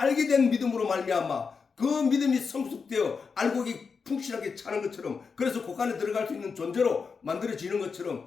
알게 된 믿음으로 말미암아 그 믿음이 성숙되어 알곡이 풍실하게 차는 것처럼 그래서 곳간에 들어갈 수 있는 존재로 만들어지는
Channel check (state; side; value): quieter; right; 5.4 dB